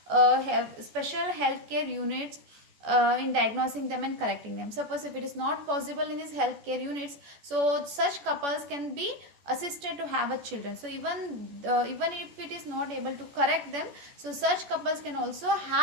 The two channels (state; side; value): late; left; 14 ms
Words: a special healthcare units in diagnosing them and correcting them. Suppose if it is not possible in these healthcare units, so such couples can be assisted to have a children. So even if it is not able to correct them, so such couples can also